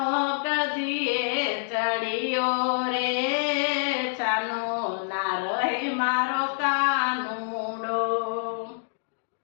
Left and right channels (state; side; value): silent; right; digital silence